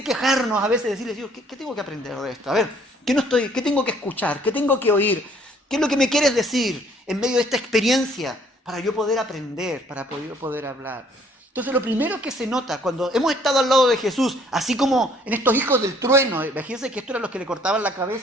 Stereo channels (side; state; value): both; normal; correlation 0.61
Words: quejarnos a veces, decirles, Dios, ¿qué tengo que aprender de esto? A ver, ¿qué tengo que escuchar? ¿Qué tengo que oír? ¿Qué es lo que me quieres decir en medio de esta experiencia para yo poder aprender, para poder hablar? Entonces lo primero que se nota cuando hemos estado al lado de Jesús, así como en estos hijos del trueno, imagínense que estos eran los que le cortaban la